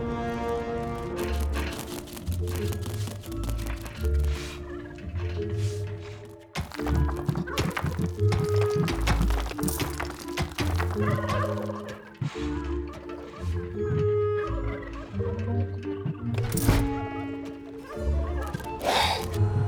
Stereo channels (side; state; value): both; identical; correlation 1.00